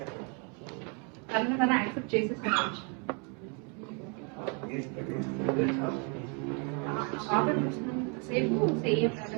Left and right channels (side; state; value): left; quieter; 36.4 dB